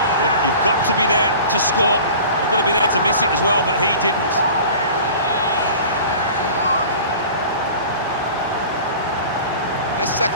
but you've got to be there to score. You've got to be there to miss it as well, but he didn't. This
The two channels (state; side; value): inverted; both; correlation -0.41